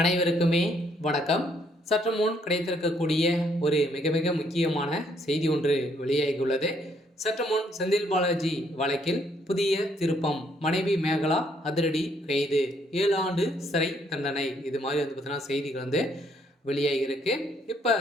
வணக்கம். சற்று முன் கிடைத்திருக்கக்கூடிய ஒரு மிக மிக முக்கியமான செய்தி ஒன்று வெளியாகியுள்ளது. சற்று முன் செந்தில் பாலாஜி வழக்கில் புதிய திருப்பம். மனைவி மேகலா அதிரடி கைது, 7 ஆண்டு சிறை தண்டனை. இது மாதிரி பார்த்தீங்கன்னா செய்திகள் வெளியாகியிருக்கு. இப்போ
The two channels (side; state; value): both; normal; correlation 0.69